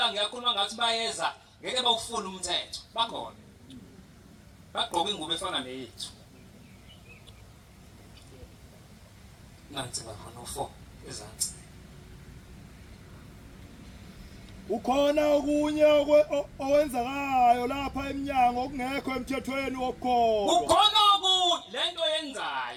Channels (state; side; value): identical; both; correlation 1.00